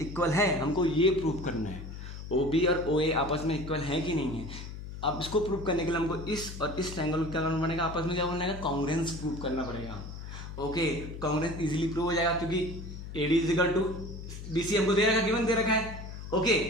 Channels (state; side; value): noise; left; hum, 10 dB below the sound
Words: है, हमको ये प्रूव करना है OB और OA आपस में इक्वल है कि नहीं है। अब इसको प्रूव करने के लिए हमको इस और इस ट्रायंगल को क्या करना पड़ेगा, आपस में क्या करना है, कॉन्ग्रुएंस प्रूव करना पड़ेगा। ओके कॉन्ग्रुएंस इजीली प्रूव हो जाएगा क्योंकि AD इक्वल टू BC हमको दे रखा है, गिवन दे रखा है। ओके